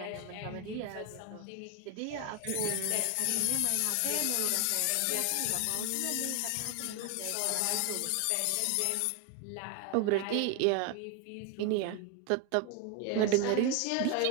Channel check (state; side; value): different; both; correlation 0.01